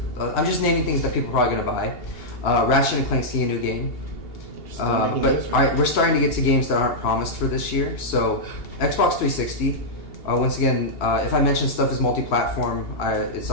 I'm just naming things that people are probably gonna buy. Ratchet and Clank's a new game. But all right, we're starting to get to games that aren't promised for this year. So Xbox 360. Once again, if I mention stuff is multi-platform, it's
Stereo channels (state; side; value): late; right; 2.8 ms